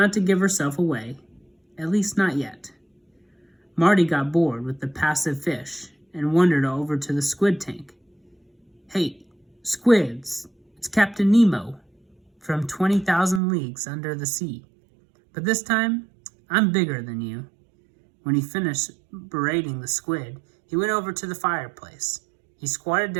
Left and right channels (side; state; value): left; drops out; at 13.4 s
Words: to give herself away, at least not yet. Marty got bored with the passive fish and wandered over to the squid tank. "Hey, squids, it's Captain Nemo from 20,000 Leagues Under the Sea. But this time, I'm bigger than you." When he finished berating the squid, he went over to the fireplace. He squatted